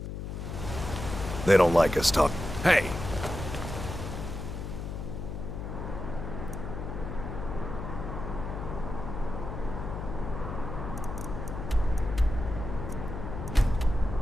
They don't like us talking. Hey!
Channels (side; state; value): left; noise; hum, 6 dB below the sound